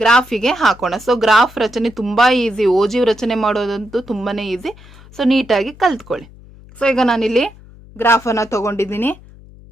ಹಾಕೋಣ. ಸೊ ಗ್ರಾಫ್ ರಚನೆ ತುಂಬಾ ಈಸಿ. ಓಜಿವ್ ರಚನೆ ಮಾಡೋದಂತೂ ತುಂಬಾನೇ ಈಸಿ. ಸೊ ನೀಟಾಗಿ ಕಲ್ತ್ಕೊಳ್ಳಿ. ಸೊ ಈಗ ನಾನಿಲ್ಲಿ ಗ್ರಾಫ್ ಅನ್ನ ತಗೊಂಡಿದ್ದೀನಿ.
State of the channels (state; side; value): noise; left; hum, 22 dB below the sound